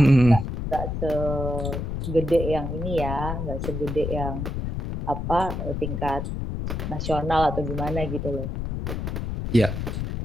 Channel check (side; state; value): left; noise; rumble, 3 dB below the sound